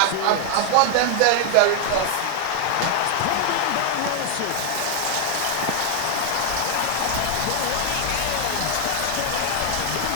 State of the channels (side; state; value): both; different; correlation 0.00